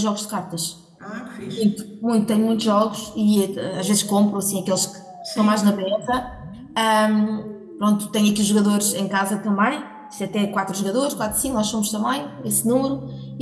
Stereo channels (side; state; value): both; identical; correlation 1.00